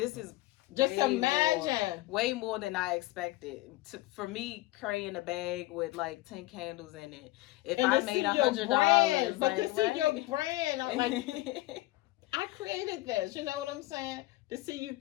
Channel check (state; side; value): quieter; right; 18.5 dB